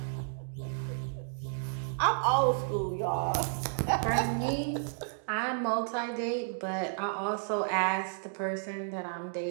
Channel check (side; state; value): left; silent; digital silence